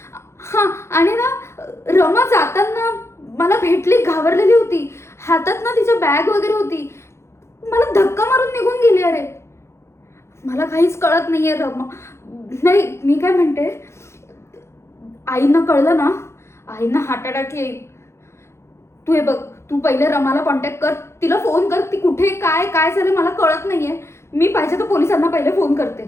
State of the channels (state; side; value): late; right; 0.13 ms